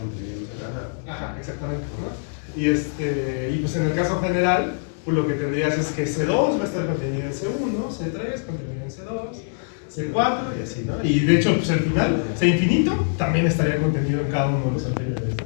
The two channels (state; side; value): silent; right; digital silence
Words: Ajá, exactamente, ¿no? Y pues en el caso general, pues lo que tendrías es que C2 va a estar contenido en C1, C3 contenido en C2, C4 y así, ¿no? Y de hecho, pues al final, C infinito también estaría contenido en cada uno de los anteriores,